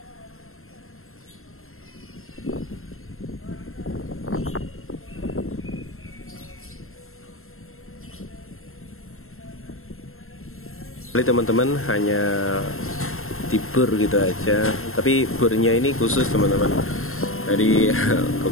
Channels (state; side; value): late; right; 0.62 ms